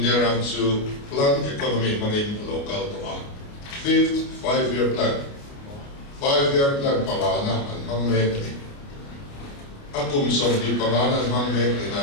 their to plan economy money local to 5th 5-year plan. 5-year plan Pagana and Mangmekni. Akum Somdi Pagana and Mangmekni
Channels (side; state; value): right; late; 29 ms